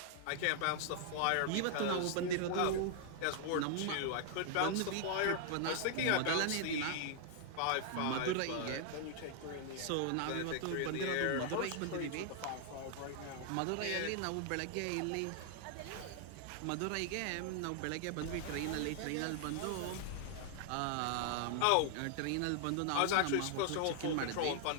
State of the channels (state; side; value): different; both; correlation 0.00